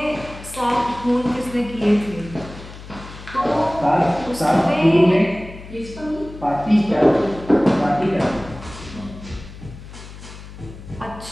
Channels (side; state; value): left; noise; hum, 15 dB below the sound